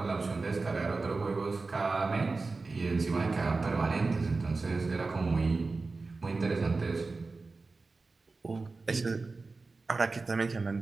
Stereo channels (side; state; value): left; quieter; 3.8 dB